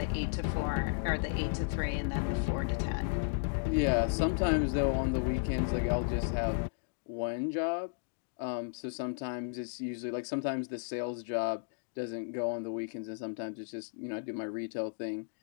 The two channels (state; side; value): silent; right; digital silence